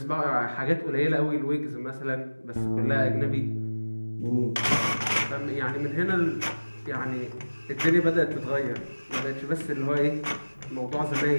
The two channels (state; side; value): inverted; both; correlation -1.00